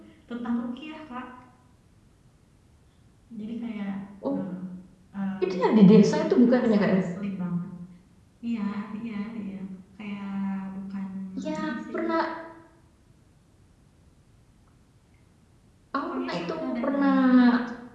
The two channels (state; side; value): identical; both; correlation 1.00